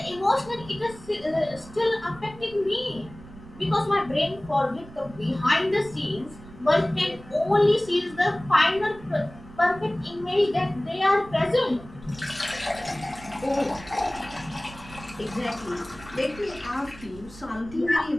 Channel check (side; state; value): right; noise; rumble, 18 dB below the sound